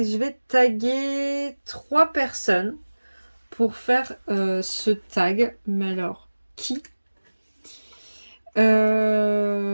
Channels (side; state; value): both; inverted; correlation -1.00